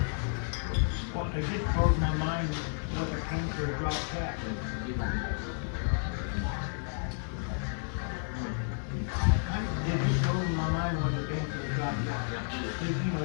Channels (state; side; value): silent; right; 57 dB below the other